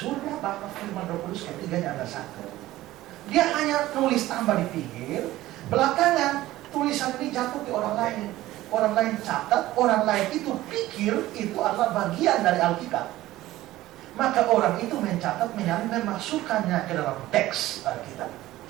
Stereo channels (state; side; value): quieter; left; 16.1 dB